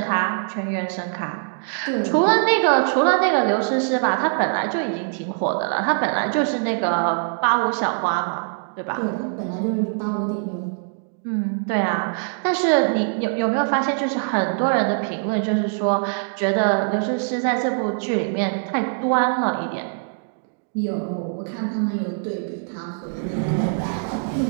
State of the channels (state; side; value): silent; left; digital silence